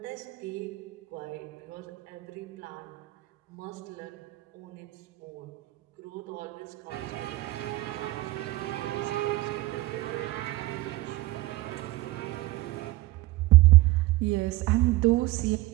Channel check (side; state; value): left; quieter; 19.5 dB